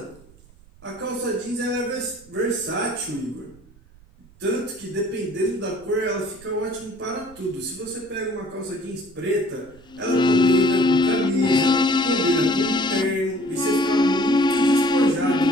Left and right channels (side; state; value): right; noise; rumble, 26 dB below the sound